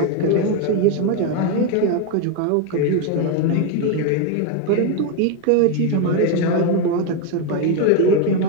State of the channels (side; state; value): both; different; correlation 0.02